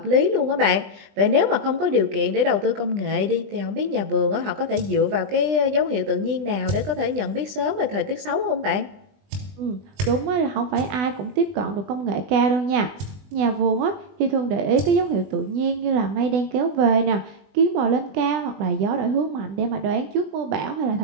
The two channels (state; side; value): late; left; 20 ms